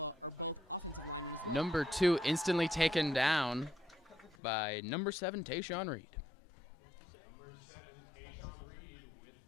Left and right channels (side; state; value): right; drops out; at 4.4 s